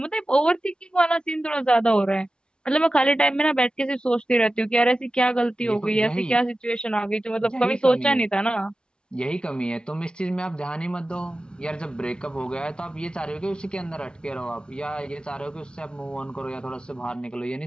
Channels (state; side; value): late; right; 0.053 ms